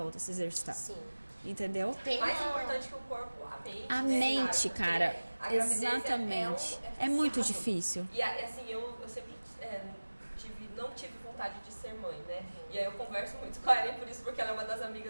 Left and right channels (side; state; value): both; inverted; correlation -1.00